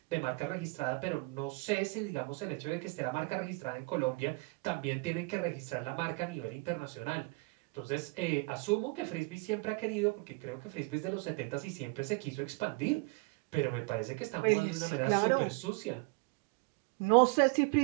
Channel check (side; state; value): left; quieter; 27.9 dB